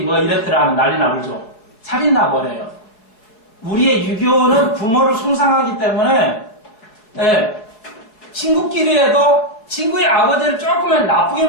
뭐 이랬더라 하면 난리 나버죠. 살인 나버려요. 우리의 유교는 부모를 숭상하기 때문에 친구끼리에도 친구의 아버지를 조금만 나쁘게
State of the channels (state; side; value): late; right; 4.7 ms